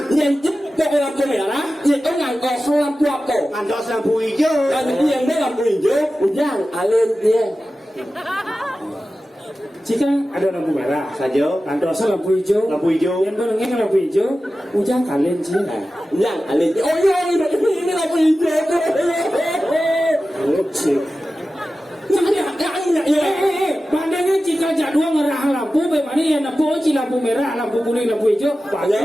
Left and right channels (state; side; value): normal; both; correlation 0.94